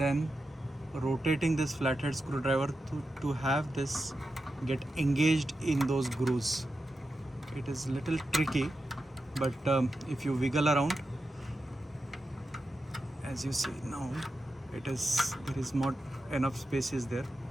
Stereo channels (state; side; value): normal; both; correlation 0.89